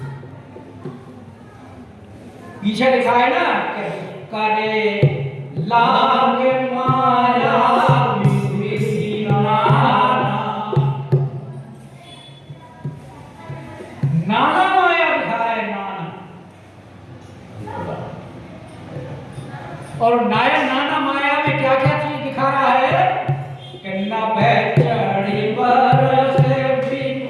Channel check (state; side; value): identical; both; correlation 1.00